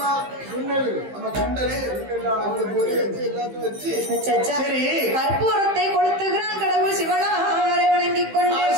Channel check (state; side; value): late; left; 15 ms